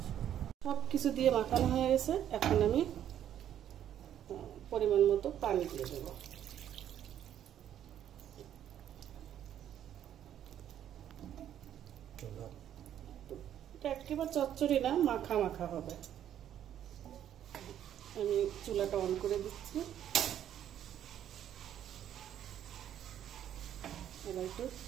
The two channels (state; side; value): quieter; left; 10.5 dB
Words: সব কিছু দিয়ে মাখানো হয়ে গেছে। এখন আমি পরিমাণ মতো পানি দিয়ে দেবো। একেবারে চচ্চড়ি না, মাখা মাখা হবে। আমি চুলাটা অন করে দিচ্ছি। এবার একটু